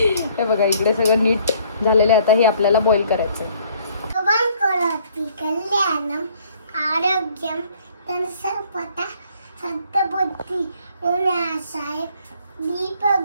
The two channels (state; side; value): inverted; both; correlation -0.61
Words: हे बघा, इकडे सगळं नीट झालेलं आहे. आता हे आपल्याला बॉईल करायचंय. कल्याणम आरोग्यम सर्वदा सद्बुद्धी विनाशाय दीपक